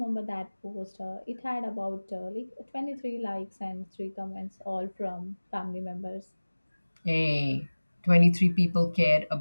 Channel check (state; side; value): inverted; both; correlation -1.00